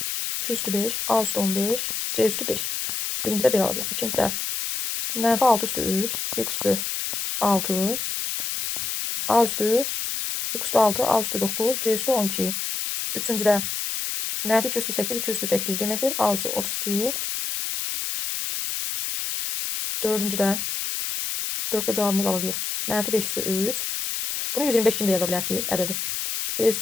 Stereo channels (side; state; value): left; noise; hiss, 3 dB below the sound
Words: 2 üstü 5. A üstü 15. C üstü 5. Birincidə belə alacaq. İkincidə mənfi 6 üstü 3. X üstü 6. A üstü X üstü 6. A üstü 9. C üstü 12. Üçüncüdə mənfi 2 üstü 8. 2 üstü 8 deməkdir. A üstü 32. Dördüncüdə 4'də cavabımız alacağıq. Mənfi 5 üstü 3. Bunu 125 kimi də yaza bilərsiniz ədədi. B